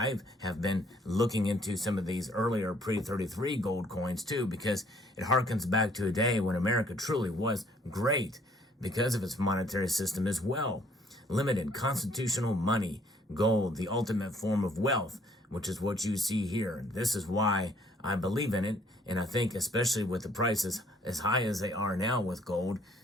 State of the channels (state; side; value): normal; both; correlation 0.62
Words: I have been looking into some of these earlier pre-33 gold coins too, because it harkens back to a day when America truly was great because of its monetary system as well. Limited constitutional money, gold, the ultimate form of wealth, which is what you see here. This is why I believe in it. And I think especially with the prices as high as they are now with gold,